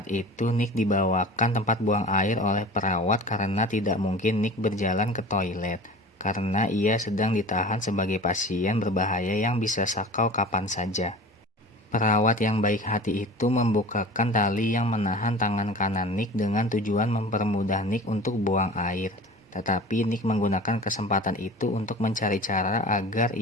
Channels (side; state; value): both; normal; correlation 0.38